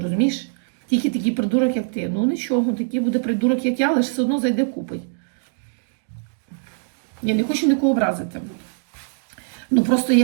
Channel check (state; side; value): silent; left; digital silence